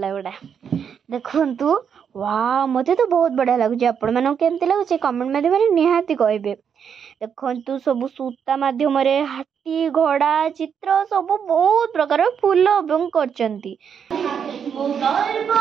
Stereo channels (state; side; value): quieter; left; 7.5 dB